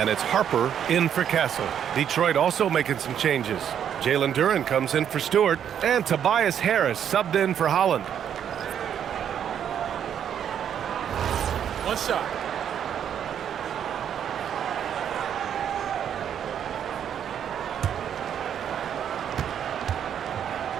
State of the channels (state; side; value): quieter; left; 9.0 dB